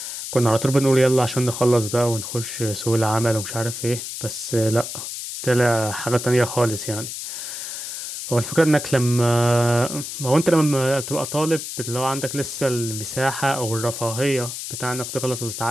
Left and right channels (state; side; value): noise; left; hiss, 7 dB below the sound